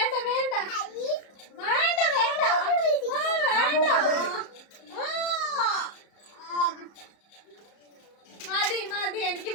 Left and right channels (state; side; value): late; right; 34 ms